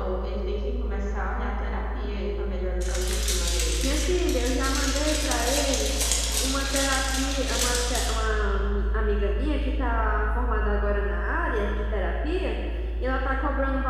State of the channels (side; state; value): both; identical; correlation 1.00